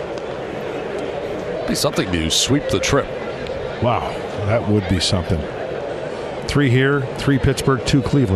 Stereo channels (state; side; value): identical; both; correlation 1.00